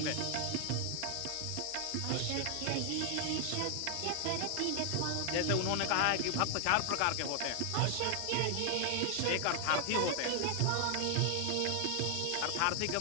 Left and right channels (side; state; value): both; different; correlation 0.00